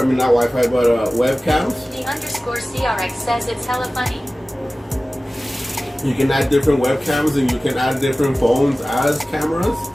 I mean not Wi-Fi, but webcams. The underscore CRX says it's hella funny. You can add different webcams, and you can add different phones as cameras,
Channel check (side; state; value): both; normal; correlation 0.97